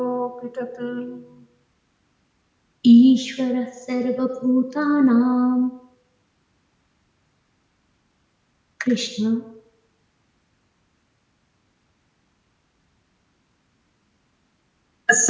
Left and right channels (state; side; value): identical; both; correlation 1.00